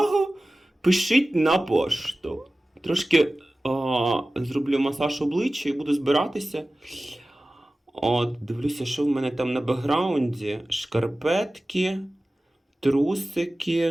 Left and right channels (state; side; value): normal; both; correlation 0.96